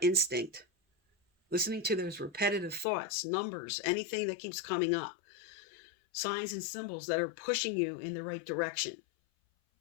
instinct. Listening to those repetitive thoughts, numbers, anything that keeps coming up. Signs and symbols that are pushing you in the right direction.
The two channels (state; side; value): drops out; right; at 2.9 s